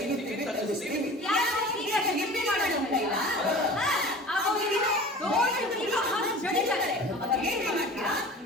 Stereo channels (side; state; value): both; normal; correlation 0.40